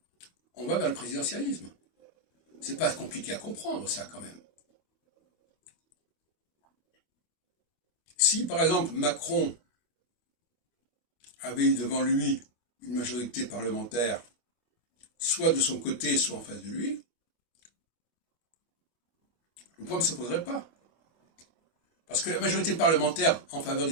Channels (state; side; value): late; right; 25 ms